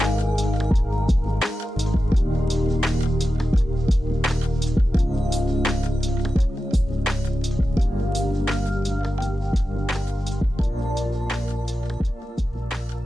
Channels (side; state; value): both; normal; correlation 0.92